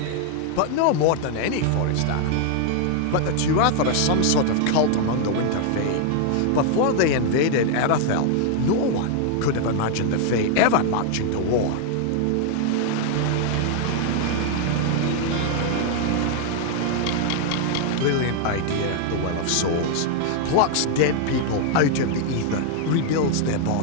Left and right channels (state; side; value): different; both; correlation 0.00